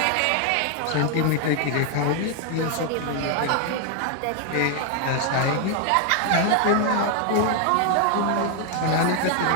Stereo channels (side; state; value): both; different; correlation 0.00